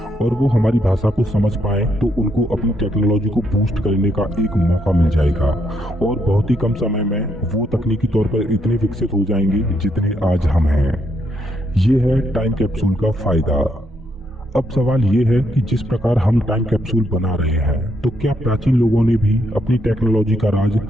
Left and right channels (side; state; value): both; normal; correlation 0.76